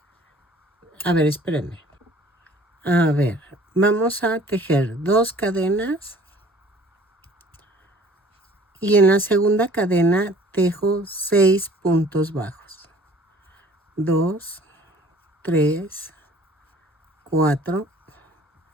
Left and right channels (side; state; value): both; normal; correlation 0.51